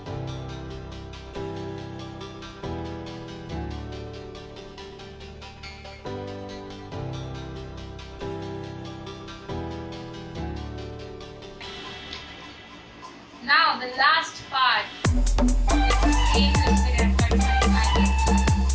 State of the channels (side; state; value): both; identical; correlation 1.00